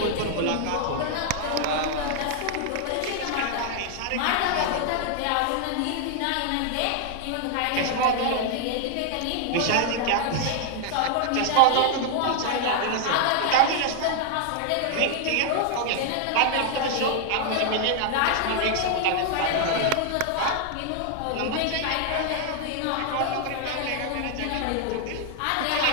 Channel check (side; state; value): both; different; correlation 0.00